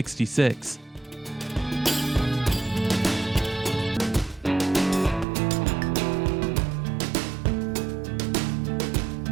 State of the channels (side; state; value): left; drops out; at 5.2 s